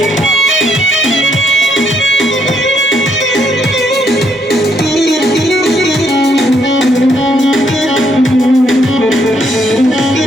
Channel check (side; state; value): both; normal; correlation 0.73